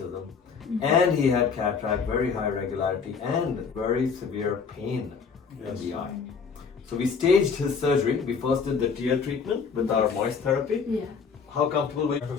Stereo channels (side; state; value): right; quieter; 5.8 dB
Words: And he had cataract, very high regularity, and very severe pain in the eye. So we staged his surgery. We first did the tear treatment with our moist therapy. Yeah. How comfortable were you? After